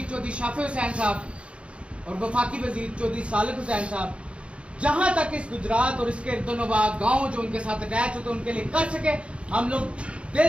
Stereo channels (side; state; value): left; late; 0.059 ms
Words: चौधरी शाफी हुसैन साहब और वफाकी वजीर चौधरी सालिक हुसैन साहब, जहां तक इस गुजरात और इसके इर्दोनवा गाँव जो उनके साथ अटैच होते उनके लिए कर सके, हम लोग